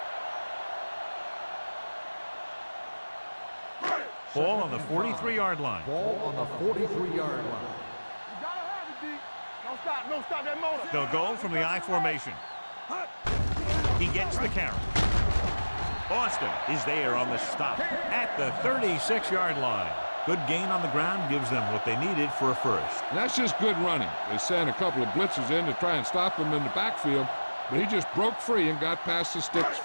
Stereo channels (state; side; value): inverted; both; correlation -1.00